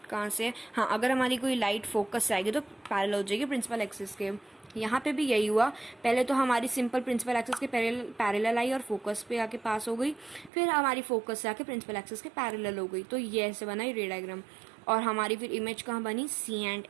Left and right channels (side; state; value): left; drops out; at 10.5 s